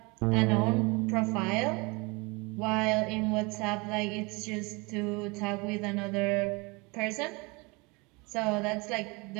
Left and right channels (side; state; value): left; quieter; 27.2 dB